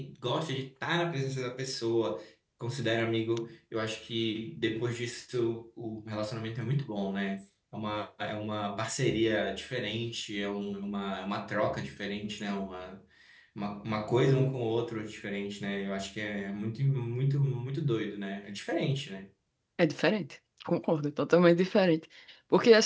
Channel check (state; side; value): identical; both; correlation 1.00